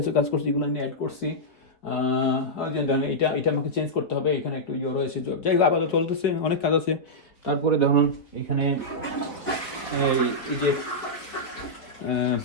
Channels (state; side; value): late; right; 4.1 ms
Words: কাজ করছি, এগুলো আমি অ্যাড করছি। এটা আমাকে চেঞ্জ করতে হবে, এখানে একটু রয়েছে, যাই হোক আপাতত চলতেছে, অনেক কাজ আছে। তারপরে ধরুন এইখানে এই যে